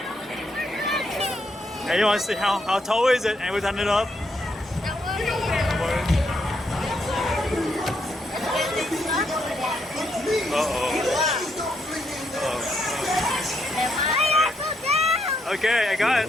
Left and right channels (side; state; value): both; normal; correlation 0.77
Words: Hey, you want to see how tall is it? And we turn it up. Okay, I got it.